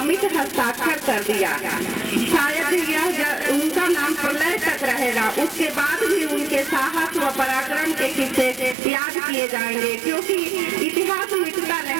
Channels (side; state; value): left; drops out; at 8.8 s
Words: हस्ताक्षर कर दिया। शायद यह उनका नाम प्रलय तक रहेगा, उसके बाद भी उनके साहस व पराक्रम के किस्से याद किए जाएंगे, क्योंकि इतिहास मिटता